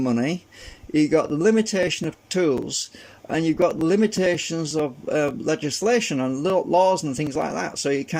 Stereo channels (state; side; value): identical; both; correlation 1.00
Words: you got the limitation of tools, and you've got the limitations of legislation and laws and things like that. So you